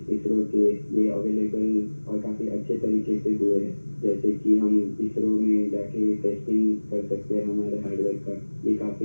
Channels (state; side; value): inverted; both; correlation -1.00